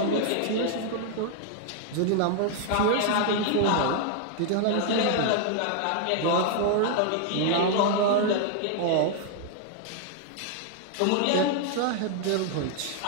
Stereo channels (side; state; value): both; different; correlation 0.00